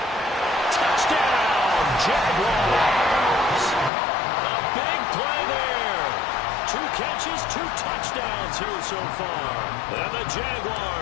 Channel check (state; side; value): drops out; right; at 3.9 s